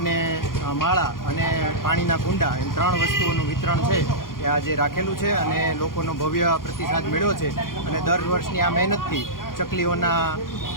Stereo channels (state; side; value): late; right; 0.91 ms